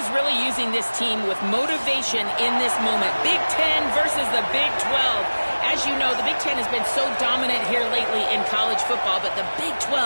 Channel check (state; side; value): inverted; both; correlation -1.00